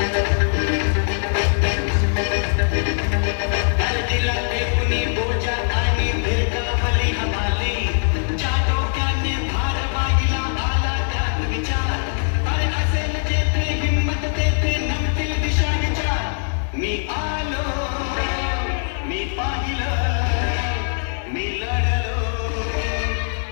दिला कुणी बोजा आणि भिरकावली हमाली ज्या डोक्याने भार वाहिला आला त्यात विचार अरे असेल जेथे हिंमत तेथे नमतील दिशा विचार मी आलो मी पाहिलं मी लढलो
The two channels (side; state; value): right; silent; digital silence